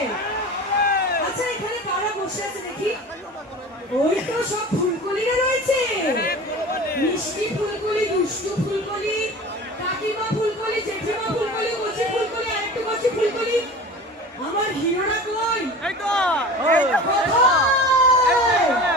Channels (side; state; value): both; normal; correlation 0.37